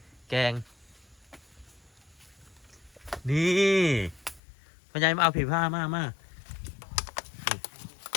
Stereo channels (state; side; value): drops out; right; at 4.4 s